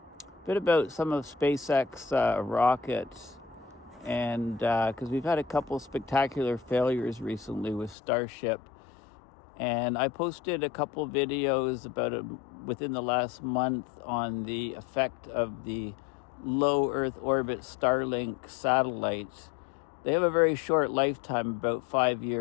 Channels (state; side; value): drops out; right; at 8.0 s